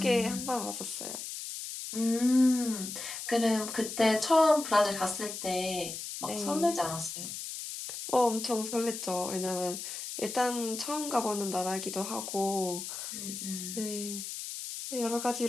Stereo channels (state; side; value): noise; left; hiss, 7 dB below the sound